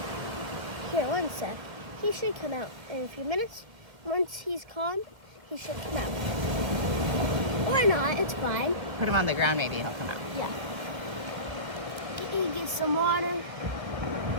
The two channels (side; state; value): left; late; 1.8 ms